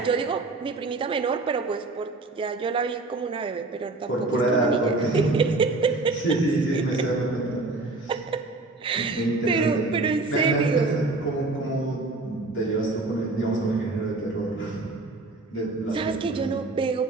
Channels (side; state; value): left; quieter; 3.3 dB